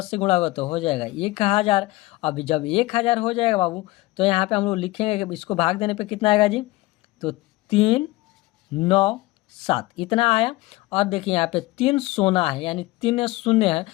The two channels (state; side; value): quieter; right; 20.0 dB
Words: से गुणा होगा तो हो जाएगा 1000। अब जब 1000 हो जाएगा बाबू तो यहाँ पे हम लोग लिखेंगे कि इसको भाग देने पे कितना आएगा जी, तो 397 इतना आया। और देखिए यहाँ पे 3 सोना है, यानी 3 शून्य है,